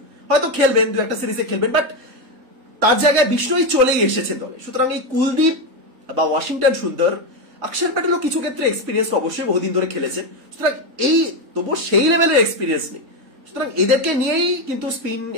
হয়তো খেলবেন, 2-1 সিরিজে খেলবেন, বাট তার জায়গায় বিষ্ণুই চলেই এসেছেন দলে। সুতরাং এই কুলদীপ বা ওয়াশিংটন সুন্দর, অক্ষর প্যাটেলও কিছু ক্ষেত্রে এক্সপিরিয়েন্স অবশ্যই বহুদিন ধরে খেলেছেন, সুতরাং এই তবুও সেই লেভেলের এক্সপিরিয়েন্স নেই। সুতরাং এদেরকে নিয়েই কিন্তু স্পিন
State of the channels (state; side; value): late; left; 3.9 ms